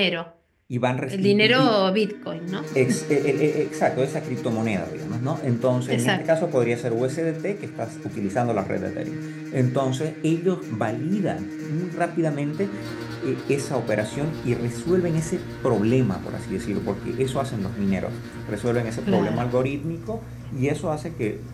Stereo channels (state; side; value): identical; both; correlation 1.00